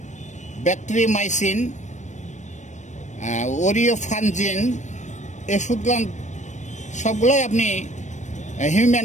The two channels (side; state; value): right; late; 0.35 ms